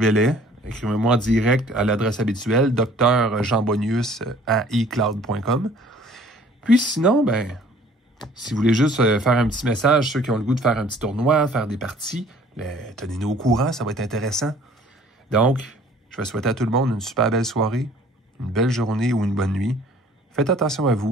Écrivez-moi en direct à l'adresse habituelle, drjeanbonius@ecloud.com. Puis sinon, si vous voulez juste faire un petit message, ceux qui ont le goût de faire un petit tournoi, faire des parties, tenez-nous au courant, ça va être intéressant. Donc, je vais souhaiter à tout le monde une super belle soirée, une belle journée ou une bonne nuit. Faites attention à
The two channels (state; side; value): normal; both; correlation 0.54